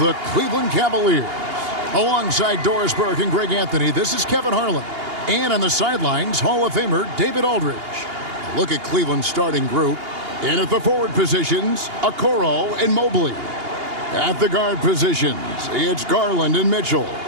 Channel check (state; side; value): late; left; 2.8 ms